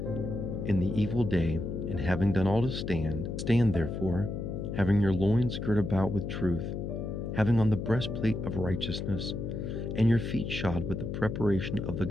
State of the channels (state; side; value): noise; left; hum, 4 dB below the sound